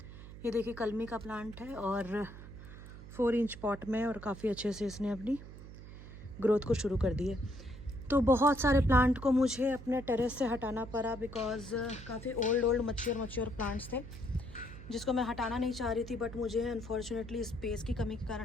ये देखिए कलमी का प्लांट है और 4 इंच पॉट में, और काफ़ी अच्छे से इसने अपनी ग्रोथ को शुरू कर दी है। तो बहुत सारे प्लांट को मुझे अपने टेरेस से हटाना पड़ा बिकॉज़ काफ़ी ओल्ड मच्योर प्लांट्स थे जिसको मैं हटाना नहीं चाह रही थी, बट मुझे अनफॉर्चुनेटली स्पेस की कमी के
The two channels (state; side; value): noise; right; hum, 14 dB below the sound